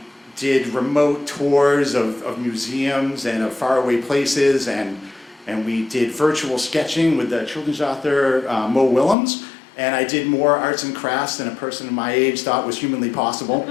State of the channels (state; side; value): drops out; right; at 9.2 s